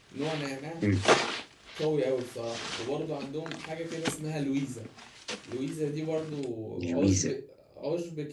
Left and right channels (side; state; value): both; identical; correlation 1.00